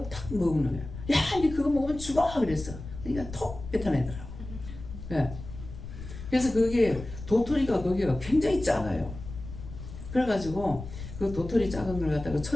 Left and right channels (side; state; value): left; noise; rumble, 11 dB below the sound